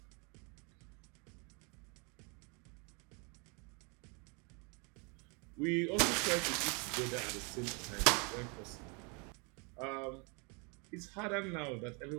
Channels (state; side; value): quieter; left; 32.7 dB